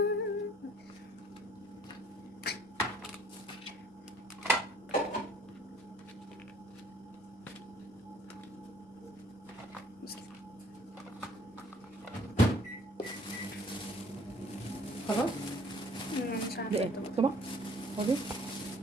بس كده. خلاص. مش ده عارفه ايه طبعا. طبق فاضي.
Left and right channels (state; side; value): normal; both; correlation 0.57